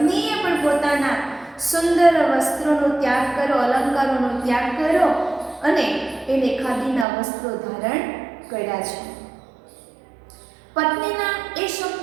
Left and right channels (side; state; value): left; drops out; at 7.1 s